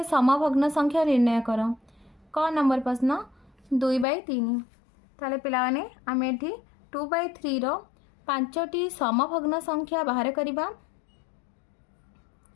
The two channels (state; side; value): drops out; right; at 4.0 s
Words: समभग्न संख्या निर्णय कर। क नंबर प्रश्न 2/3। ताले पिलाने आम एठी 2/3 रो 5टी समभग्न संख्या बाहर करवा।